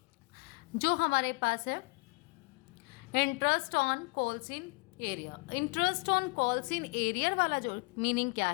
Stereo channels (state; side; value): quieter; right; 28.5 dB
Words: जो हमारे पास है interest on calls in arrear. Interest on calls in arrear वाला जो मीनिंग क्या